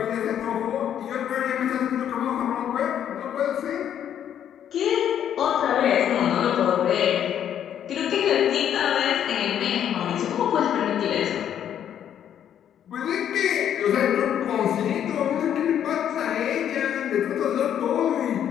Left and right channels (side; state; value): right; quieter; 9.8 dB